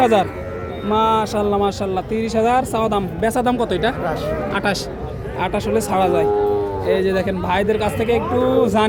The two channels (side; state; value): both; identical; correlation 1.00